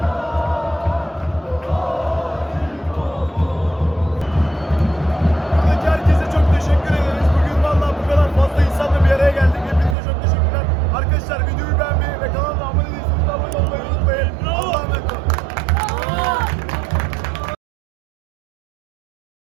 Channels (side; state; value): left; drops out; at 10.0 s